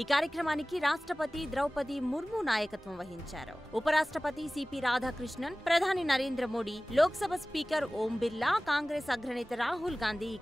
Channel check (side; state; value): both; normal; correlation 0.98